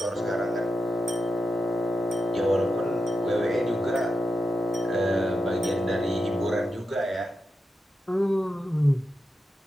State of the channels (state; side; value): normal; both; correlation 0.88